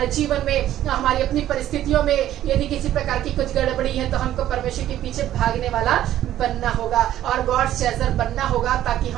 जीवन में, हमारी अपनी परिस्थितियों में यदि किसी प्रकार की कुछ गड़बड़ी है तो हमको परमेश्वर के पीछे भागने वाला बनना होगा और गॉड चेजर बनना होगा, ताकि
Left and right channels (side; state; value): left; quieter; 12.6 dB